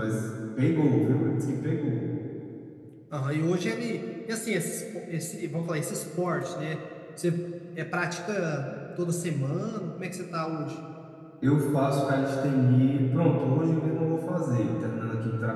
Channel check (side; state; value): both; identical; correlation 1.00